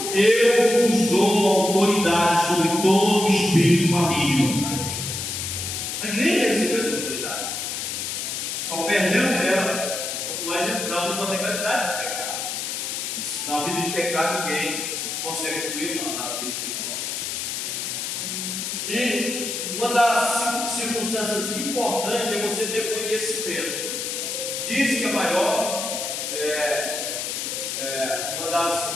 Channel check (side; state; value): left; noise; hiss, 3 dB below the sound